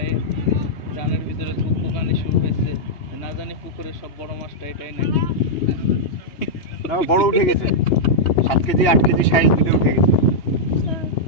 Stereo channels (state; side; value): late; right; 2.8 ms